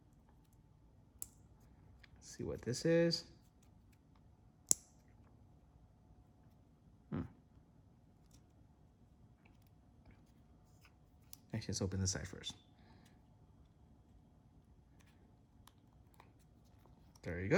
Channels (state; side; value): identical; both; correlation 1.00